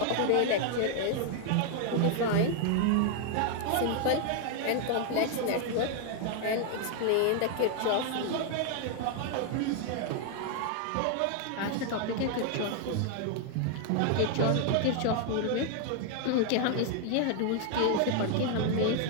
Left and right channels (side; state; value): both; different; correlation 0.00